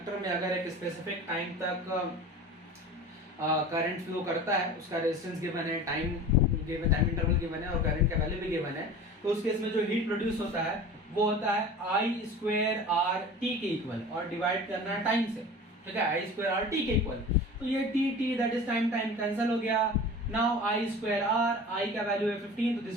में अगर एक स्पेसिफिक टाइम तक करंट फ्लो करता है, उसका रेजिस्टेंस गिवन है, time given, time interval given है और करंट का वैल्यू भी गिवन है, तो उस केस में जो हीट प्रोड्यूस होता है वो होता है I स्क्वायर आर टी के इक्वल, और डिवाइड करना है टाइम से। ठीक है, I स्क्वायर आर टी के इक्वल, तो ये T that is time cancel हो गया। Now I square R, I का वैल्यू है 15, तो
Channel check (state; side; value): normal; both; correlation 0.37